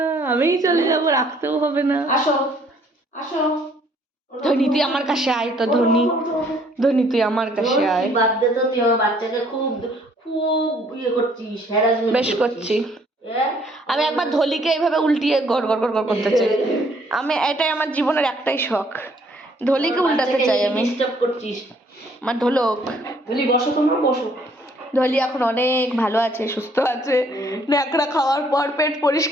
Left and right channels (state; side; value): normal; both; correlation 0.63